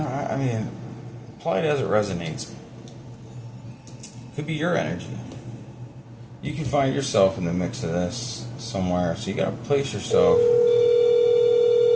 mean, apply it as it resonates. Could be your energy. You can find yourself in the mix of this somewhere. So you gotta place yourself.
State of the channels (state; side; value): identical; both; correlation 1.00